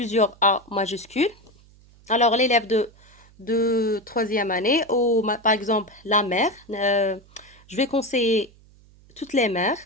A majuscules. Alors, l'élève de troisième année, ou par exemple la mère, je vais conseiller toutes les mères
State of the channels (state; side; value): noise; right; hum, 27 dB below the sound